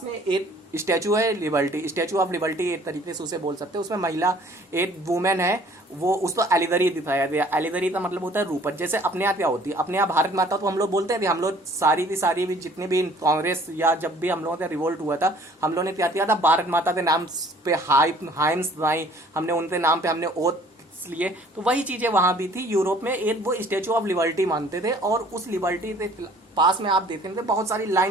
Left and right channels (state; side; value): normal; both; correlation 0.55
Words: में एक स्टैचू है, लिबर्टी, स्टैचू ऑफ लिबर्टी एक तरीके से उसे बोल सकते हैं। उसमें महिला, एक वुमेन है, वो उसको एलिगरी दिखाया गया। एलिगरी का मतलब होता है रूपक। जैसे अपने यहाँ क्या होती है, अपने यहाँ भारत माता तो हम लोग बोलते हैं, हम लोग सारी की सारी भी जितनी भी कांग्रेस या जब भी हम लोगों का रिवोल्ट हुआ था, हम लोगों ने क्या किया था, भारत माता के नाम पे हाइम्स बनाई, हमने उनके नाम पे हमने ओथ लिए। तो वही चीजें वहां भी थी यूरोप में। एक वो स्टेचू ऑफ लिबर्टी मानते थे, और उस लिबर्टी के पास में आप देख रहे थे बहुत सारी